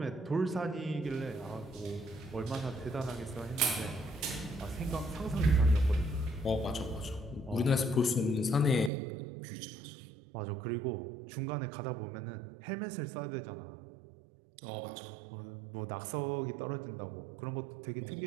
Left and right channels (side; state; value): left; drops out; at 8.9 s